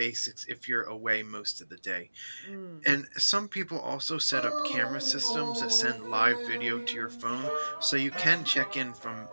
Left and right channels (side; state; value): both; inverted; correlation -1.00